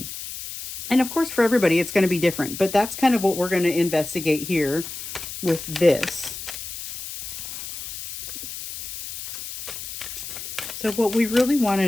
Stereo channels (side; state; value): left; noise; hiss, 9 dB below the sound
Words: And of course, for everybody, it's going to be different, but that's kind of what we're going to investigate here with this. So what we really want to